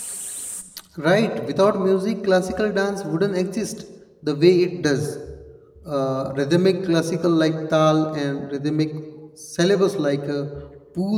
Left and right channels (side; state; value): both; identical; correlation 1.00